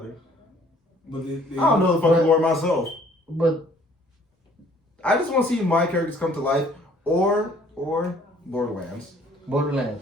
But I don't know the fucking lore myself. But I just want to see my characters come to life, or Borderlands.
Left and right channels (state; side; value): normal; both; correlation 0.58